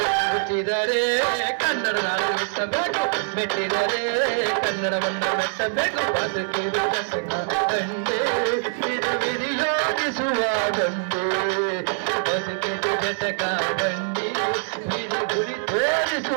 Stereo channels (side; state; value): left; silent; digital silence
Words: ಹುಟ್ಟಿದರೆ ಕನ್ನಡ ನಾಡು ಮೆಟ್ಟಬೇಕು, ಮೆಟ್ಟಿದರೆ ಕನ್ನಡವನ್ನು ಮೆಟ್ಟಬೇಕು. ಬದುಕಿದು ಕಸಕ ಗಂಡೆ ಇದು ವಿಧಿಯೋಗಿಸುವ ಗಂಡೆ, ಬದುಕಿದು ಜಟಕ ಬಂಡಿ ವಿಧಿ ಗುರಿ